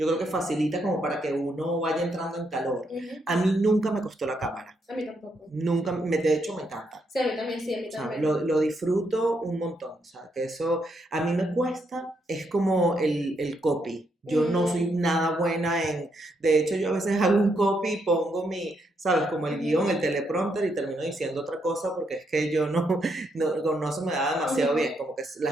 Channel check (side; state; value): both; normal; correlation 0.77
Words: creo que facilita como para que uno vaya entrando en calor. A mí nunca me costó la cámara. A mí tampoco. Nunca, de hecho me encanta. Sí, a mí también, sí, a mí también. O sea, lo disfruto un montón, o sea, que eso a mí me cuesta, es como el copy. Yo no soy nada buena en... De hecho, yo a veces hago un copy y pongo ¿sabes? Como el guión, el teleprompter y termino diciendo otra cosa porque es que yo no se me da demasiado bien. Como que la